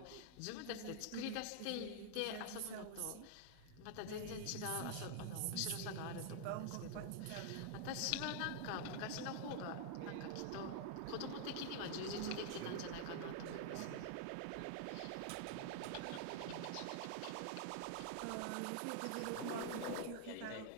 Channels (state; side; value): different; both; correlation 0.00